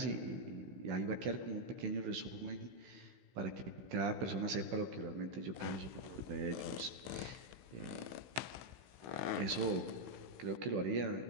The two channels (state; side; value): late; left; 16 ms